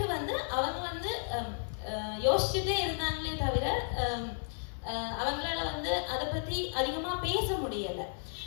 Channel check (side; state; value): right; silent; digital silence